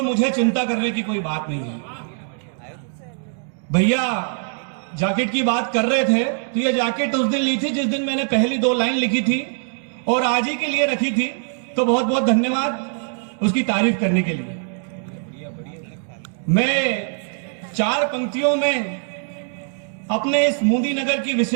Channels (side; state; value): left; silent; 59 dB below the other